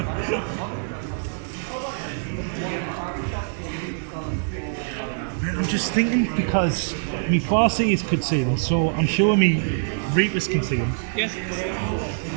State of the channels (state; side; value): silent; left; 62 dB below the other